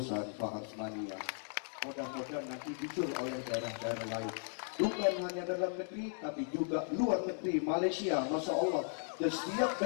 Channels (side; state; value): right; silent; 53 dB below the other